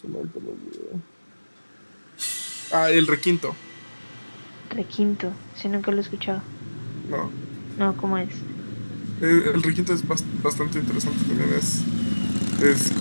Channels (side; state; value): both; inverted; correlation -1.00